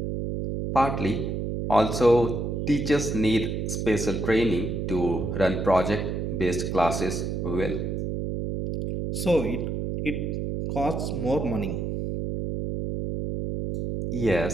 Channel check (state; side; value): noise; right; hum, 2 dB below the sound